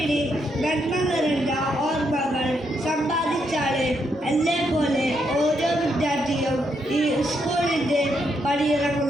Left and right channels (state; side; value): normal; both; correlation 0.78